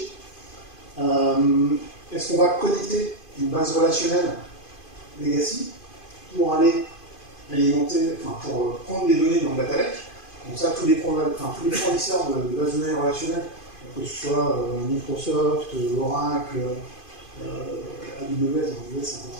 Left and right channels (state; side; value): late; right; 2.5 ms